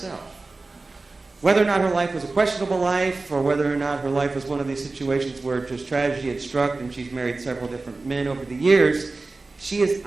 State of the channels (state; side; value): quieter; left; 3.5 dB